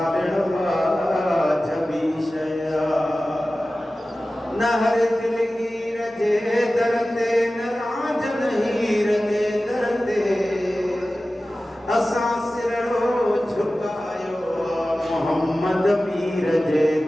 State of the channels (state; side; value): normal; both; correlation 0.96